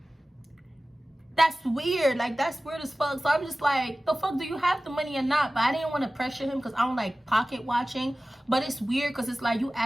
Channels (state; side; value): normal; both; correlation 0.97